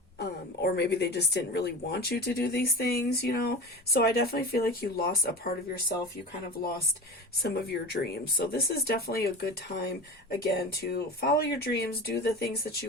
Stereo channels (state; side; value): normal; both; correlation 0.31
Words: Or maybe they just didn't really want you to do these things, you know. So I definitely feel like you lost a part of yourself. You kind of lost some of your dreams. So this is definitely a good time, again, to follow your dreams, do the things that